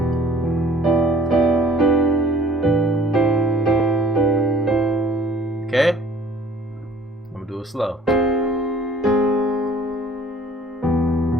Okay, I'm gonna do it slow.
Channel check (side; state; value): both; normal; correlation 0.53